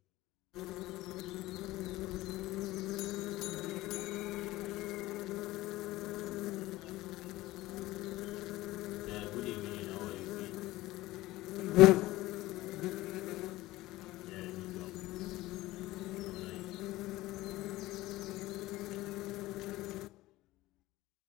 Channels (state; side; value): quieter; right; 17.9 dB